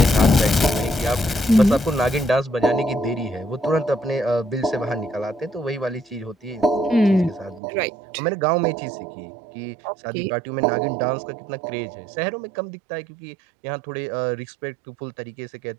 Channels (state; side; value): drops out; left; at 7.6 s